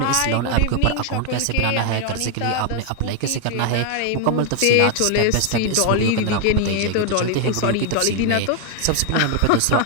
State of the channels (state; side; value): different; both; correlation 0.01